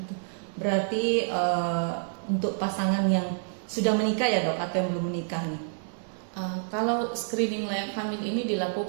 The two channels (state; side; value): silent; left; digital silence